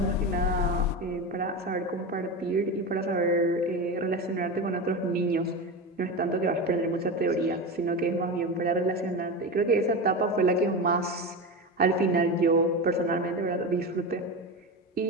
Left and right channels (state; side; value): normal; both; correlation 0.21